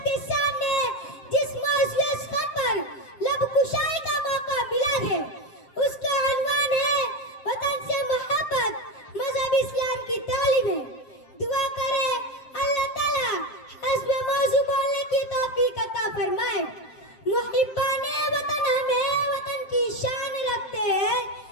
सामने जिस मौजूद स्थान पर लब कुशाई का मौका मिला है उसका अनवान है वतन से मोहब्बत, मजहब इस्लाम की तालीम है। दुआ करें अल्लाह ताला हस्ब मौजू बोलने की तौफीक अता फरमाए। मुहिब्बाने वतन हमें वतन की शान रखते हैं,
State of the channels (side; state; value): right; late; 7.6 ms